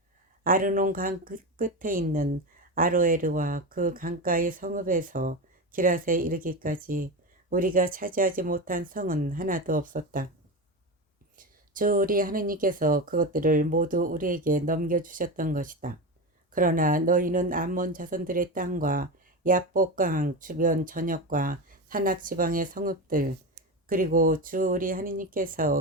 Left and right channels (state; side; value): normal; both; correlation 0.20